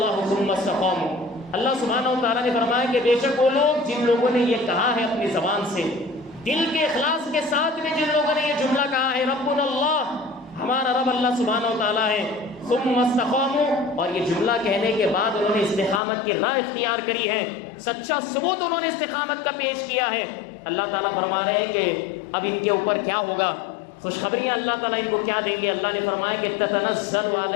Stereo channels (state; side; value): drops out; right; at 16.0 s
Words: ثم استقاموا، اللہ سبحانہ و تعالیٰ نے فرمایا کہ بے شک وہ لوگ جن لوگوں نے یہ کہا ہے اپنی زبان سے، دل کے اخلاص کے ساتھ میں جن لوگوں نے یہ جملہ کہا ہے ربنا اللہ، ہمارا رب اللہ سبحانہ و تعالیٰ ہے، ثم استقاموا، اور یہ جملہ کہنے کے بعد انہوں نے استقامت کی راہ اختیار کری ہے، سچا ثبوت انہوں نے استقامت کا پیش کیا ہے، اللہ تعالیٰ فرما رہے ہیں کہ اب ان کے اوپر کیا ہوگا، خوشخبریاں اللہ تعالیٰ ان کو کیا دیں گے۔ اللہ نے فرمایا کہ تتنزل